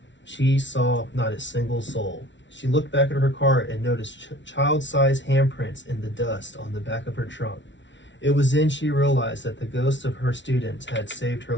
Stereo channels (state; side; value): late; right; 0.54 ms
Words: She saw not a single soul. She looked back at her car and noticed child-sized handprints in the dust on the back of her trunk. It was then she realized that the ghosts of her students had saved her